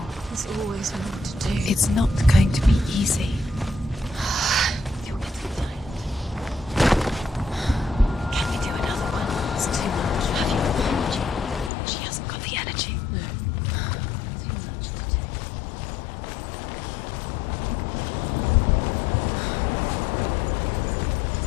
There's always more to do. It's not going to be easy. You're getting tired. Can you do another one? It's too much. Have you energy? She hasn't got the energy. No. Too much to do.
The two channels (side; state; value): right; drops out; at 11.7 s